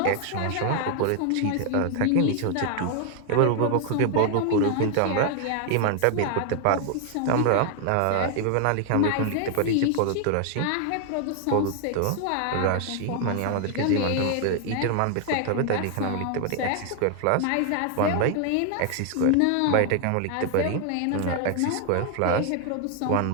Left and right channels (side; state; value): both; different; correlation 0.00